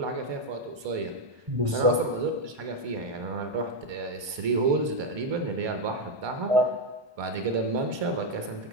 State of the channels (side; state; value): left; late; 1.2 ms